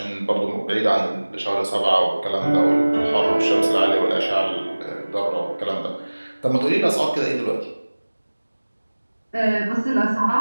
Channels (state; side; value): inverted; both; correlation -1.00